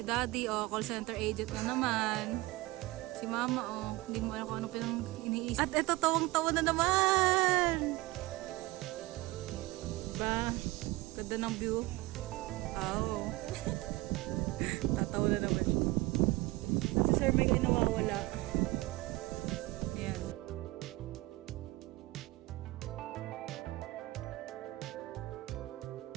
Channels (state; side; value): quieter; left; 20.5 dB